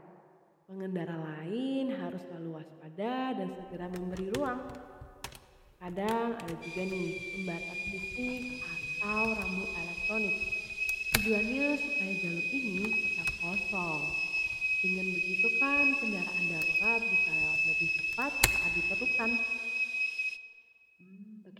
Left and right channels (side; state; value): both; identical; correlation 1.00